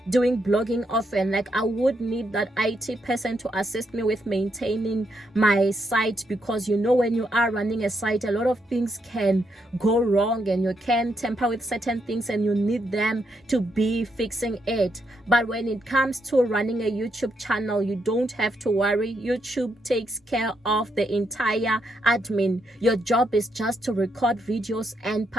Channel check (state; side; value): normal; both; correlation 0.79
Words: doing blogging often, like I would need that IT person to assist me with maintaining my site, because you know, when you are running a site, a lot of things can go wrong and you can tamper with certain things and you need them to be fixing it. But when it comes to running a YouTube channel, you don't have to worry. YouTube takes care of the entire admin. Your job is just to record videos and